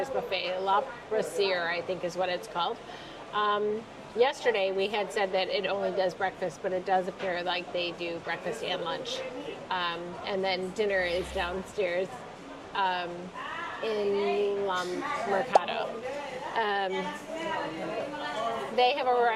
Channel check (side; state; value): both; identical; correlation 1.00